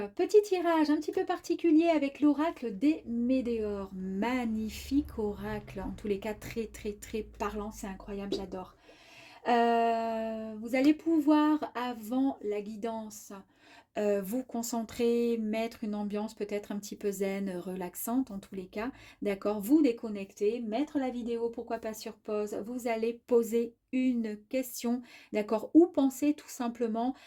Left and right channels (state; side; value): identical; both; correlation 1.00